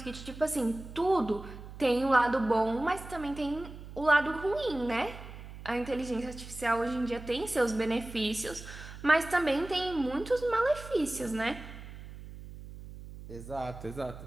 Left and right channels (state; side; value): noise; right; hum, 14 dB below the sound